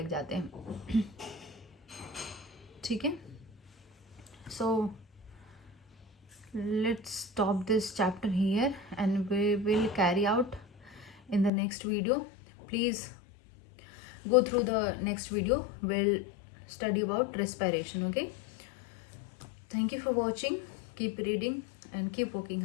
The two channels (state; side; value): drops out; right; at 11.5 s